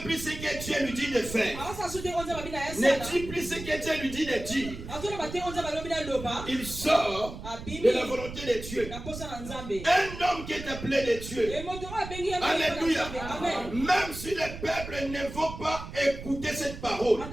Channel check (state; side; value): noise; right; rumble, 11 dB below the sound